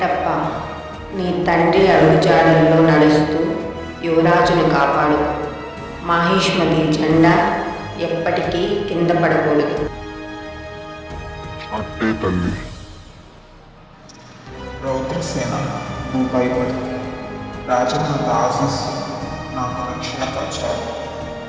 నీ తండ్రి అడుగుజాడల్లో నడుస్తూ యువరాజును కాపాడు. మాహిష్మతి జెండా ఎప్పటికీ కింద పడకూడదు. అట్టే తల్లి. రౌద్రసేన, నువ్వు భయపడు. రాజమాత ఆశీస్సు నాకు రక్షణ కవచాలు.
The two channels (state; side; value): identical; both; correlation 1.00